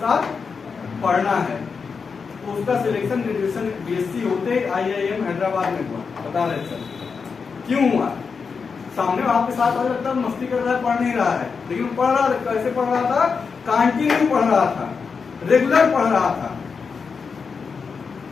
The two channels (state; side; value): quieter; right; 5.4 dB